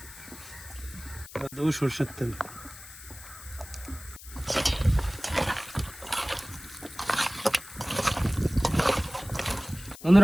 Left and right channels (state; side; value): noise; left; hiss, 16 dB below the sound